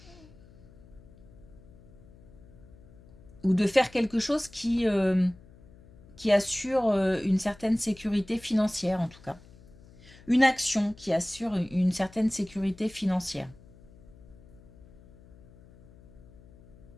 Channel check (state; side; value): noise; left; hum, 23 dB below the sound